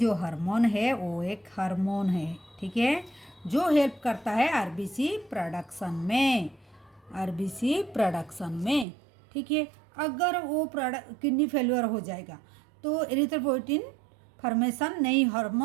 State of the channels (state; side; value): drops out; left; at 8.8 s